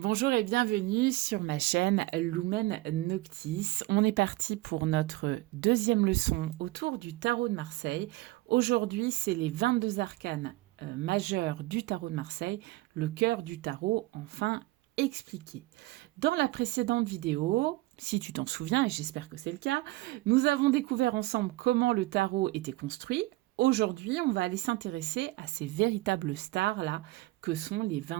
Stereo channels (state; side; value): quieter; left; 19.2 dB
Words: et bienvenue sur ma chaîne Lumen Noctis. On est parti pour notre deuxième leçon autour du tarot de Marseille. Aujourd'hui, c'est les 22 arcanes majeurs du tarot de Marseille, le cœur du tarot enfin expliqué. Dans la précédente vidéo, si tu t'en souviens, et j'espère que c'est le cas, nous avons découvert ensemble comment le tarot était construit. Aujourd'hui, on va aller s'intéresser à ces véritables stars-là que sont les